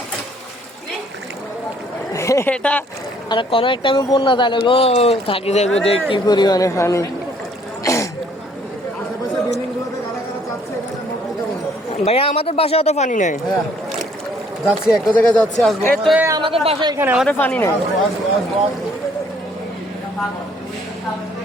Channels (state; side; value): normal; both; correlation 0.62